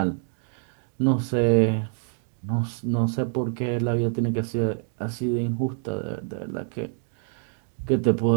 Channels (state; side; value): silent; left; 61 dB below the other